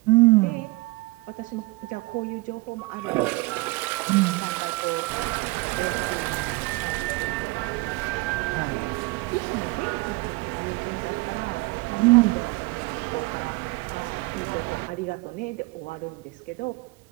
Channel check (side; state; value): left; quieter; 23.7 dB